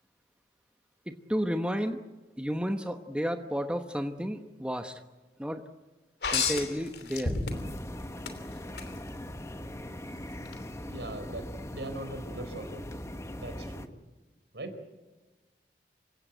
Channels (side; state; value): both; normal; correlation 0.72